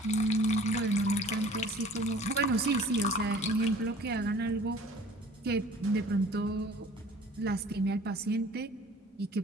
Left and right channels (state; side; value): normal; both; correlation 0.49